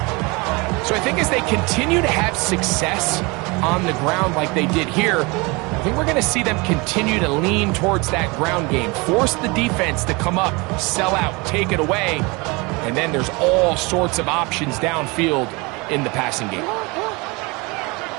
So I think as they continue to have success on the ground like they did here, I think we're going to see them continue to lean towards that ground game, force the defense to come up, sell out, take it away, and then there's all sorts of options downfield in the passing game.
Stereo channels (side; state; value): left; quieter; 26.6 dB